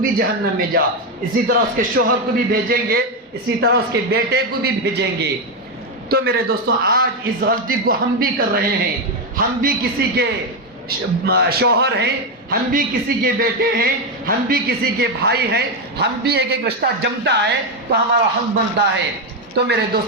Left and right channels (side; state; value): both; normal; correlation 0.07